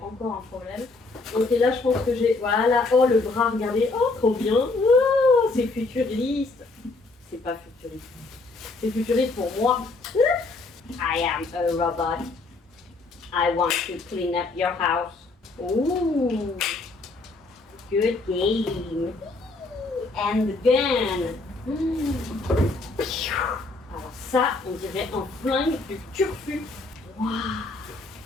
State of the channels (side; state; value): right; quieter; 3.5 dB